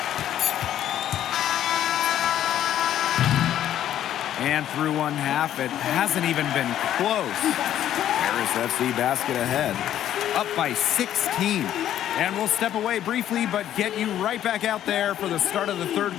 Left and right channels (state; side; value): quieter; right; 11.4 dB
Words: And through one half, it hasn't even been close. Paris FC basket ahead, up by 16. And we'll step away briefly, but get you right back out there for the start of the third